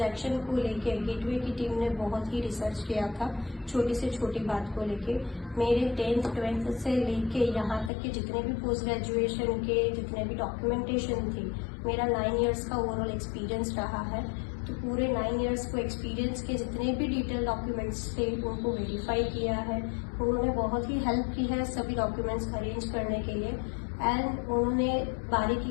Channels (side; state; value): right; drops out; at 7.9 s